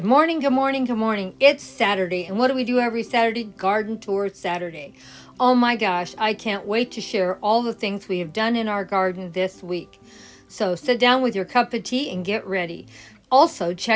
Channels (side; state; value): both; identical; correlation 1.00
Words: morning, good morning, good morning. It's Saturday, and what do we do every Saturday? Garden Tour Saturday. Oh my gosh, I can't wait to share all the things we have done in our garden this week. So sit down with your cup of tea and get ready. Also,